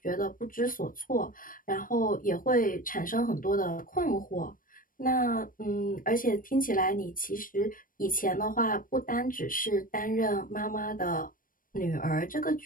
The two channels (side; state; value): right; late; 0.40 ms